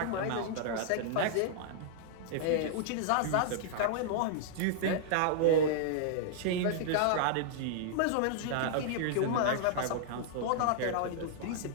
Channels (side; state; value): both; different; correlation -0.01